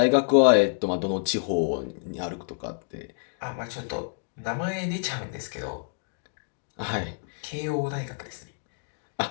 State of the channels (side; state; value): right; silent; digital silence